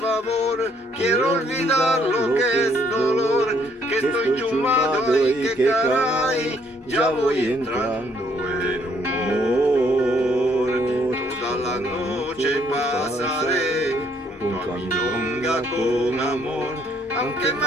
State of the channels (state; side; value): normal; both; correlation 0.67